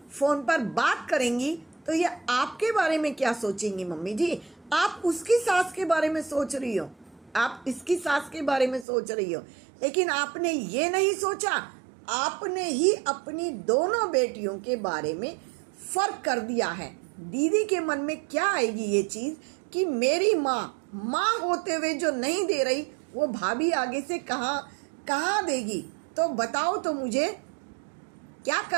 फोन पर बात करेंगी तो ये आपके बारे में क्या सोचेंगी? मम्मी जी आप उसकी सास के बारे में सोच रही हो, आप इसकी सास के बारे में सोच रही हो, लेकिन आपने ये नहीं सोचा, आपने ही अपनी दोनों बेटियों के बारे में फर्क कर दिया है। दीदी के मन में क्या आएगी ये चीज कि मेरी माँ होते हुए जो नहीं दे रही वो भाभी आगे से कहाँ देगी? तो बताओ तो मुझे क्या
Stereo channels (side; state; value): left; drops out; at 8.8 s